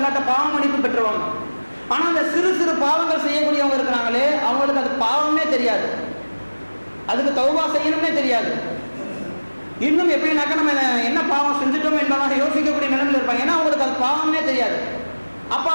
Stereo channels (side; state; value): both; inverted; correlation -1.00